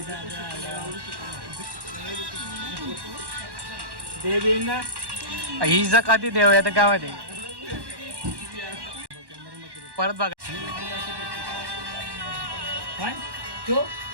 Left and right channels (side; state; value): left; late; 1.1 ms